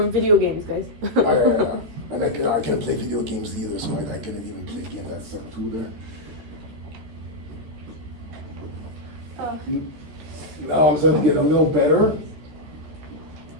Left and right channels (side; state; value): left; late; 14 ms